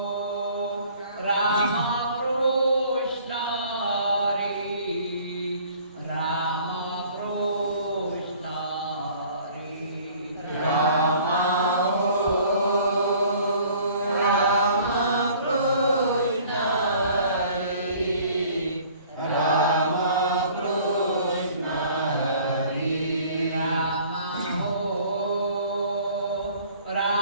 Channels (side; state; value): both; inverted; correlation -0.53